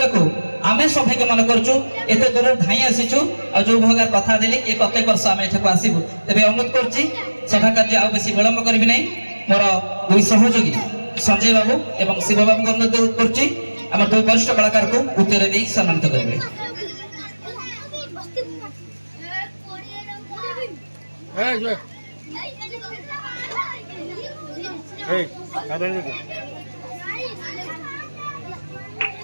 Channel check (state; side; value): inverted; both; correlation -1.00